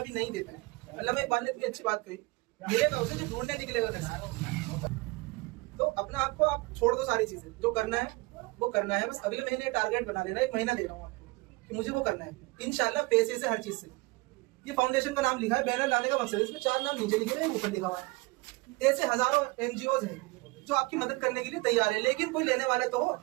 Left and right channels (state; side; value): quieter; left; 24.2 dB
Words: भी नहीं देते हैं। अल्लामा इकबाल ने इतनी अच्छी बात कही, मिलेगा उसे जो ढूंढने निकलेगा कैसे। तो अपना आपको आप छोड़ दो, सारी चीजें जो करना है वो करना है। बस अगले महीने टारगेट बना लेना, 1 महीना दे रहा हूँ आपको कि मुझे वो करना है इंशाल्लाह, पैसे से, हर चीज से। ये फाउंडेशन का नाम लिखा है, बैनर लाने का मकसद है, इसमें 4 नाम नीचे लिखे हैं, ऊपर लिखा हुआ है। ऐसे हजारों एनजीओ हैं जो आपकी मदद करने के लिए तैयार है, लेकिन कोई लेने वाला तो हो।